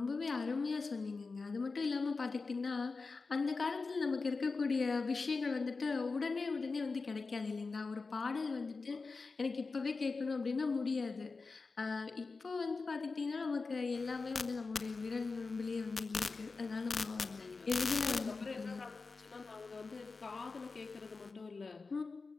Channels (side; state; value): right; quieter; 4.2 dB